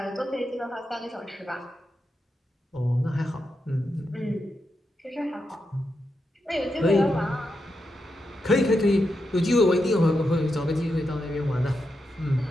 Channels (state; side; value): normal; both; correlation 0.86